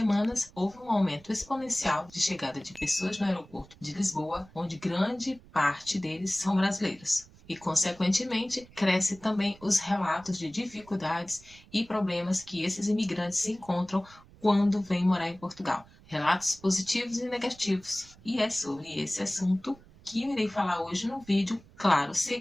houve um aumento exponencial de chegada de pessoas no aeroporto de Lisboa, onde grande parte deles são brasileiros. E, consequentemente, cresce também os relatos de dificuldades e problemas que esses imigrantes se encontram quando vêm morar em Portugal. Relatos positivos e negativos. E é sobre esse assunto que eu irei falar hoje no vídeo, claro,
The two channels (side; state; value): right; noise; rumble, 24 dB below the sound